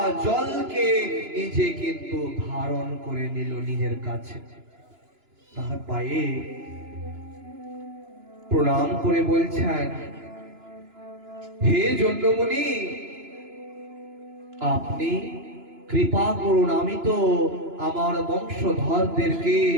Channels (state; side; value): late; left; 2.9 ms